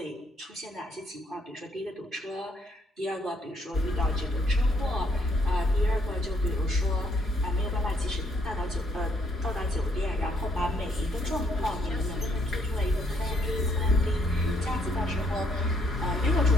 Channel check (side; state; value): both; normal; correlation 0.69